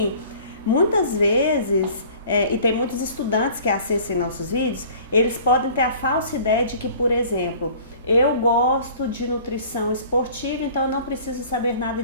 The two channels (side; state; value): both; inverted; correlation -0.48